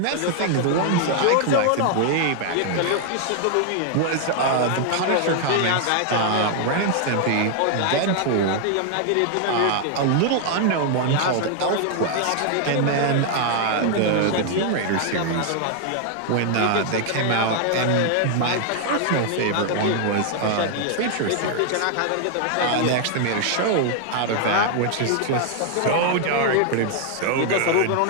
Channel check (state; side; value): different; both; correlation 0.00